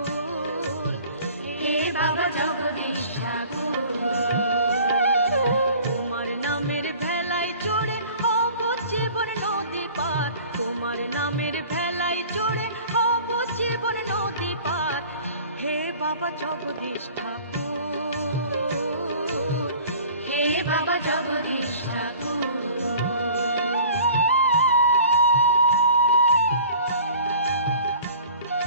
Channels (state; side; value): inverted; both; correlation -0.47